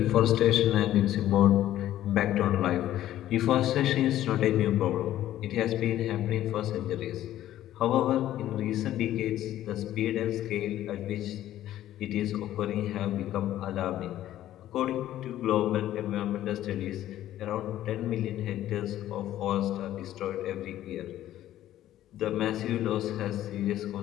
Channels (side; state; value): right; quieter; 13.0 dB